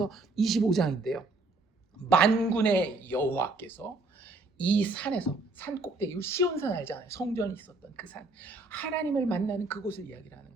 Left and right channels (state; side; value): quieter; left; 3.3 dB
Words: 25장인데요. 만군의 여호와께서 이 산에서, 산 꼭대기, 시온산 알잖아요. 성전이 있었던 그 산, 하나님을 만나는 그곳을 이야기를 하는